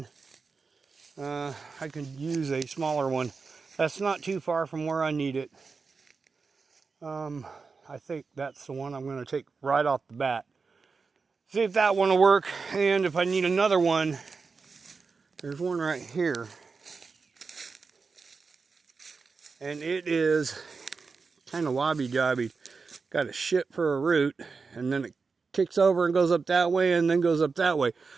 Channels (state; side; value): quieter; left; 4.7 dB